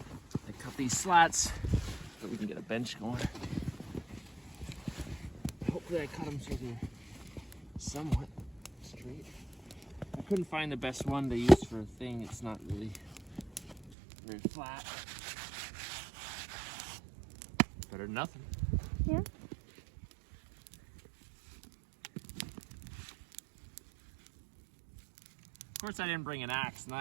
I cut these slats so we can get a bench going. Hopefully I cut them so they're somewhat straight. I couldn't find the best one to use for a thing. It's not really very flat. Better than nothing. Yeah. Of course I didn't bring an axe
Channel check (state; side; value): drops out; left; at 14.0 s